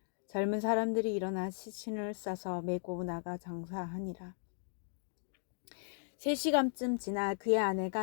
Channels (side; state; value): right; silent; digital silence